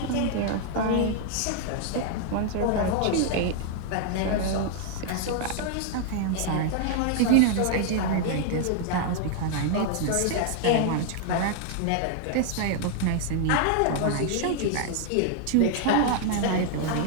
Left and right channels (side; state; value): both; different; correlation 0.00